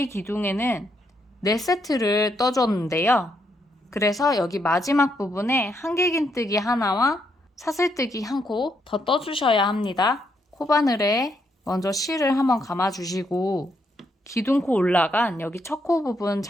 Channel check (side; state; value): both; normal; correlation 0.77